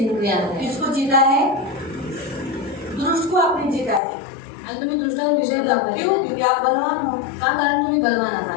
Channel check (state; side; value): drops out; right; at 4.0 s